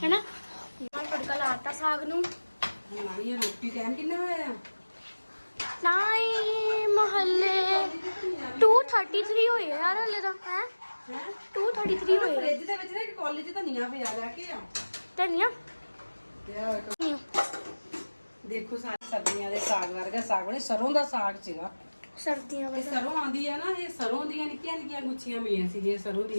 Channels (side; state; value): both; inverted; correlation -1.00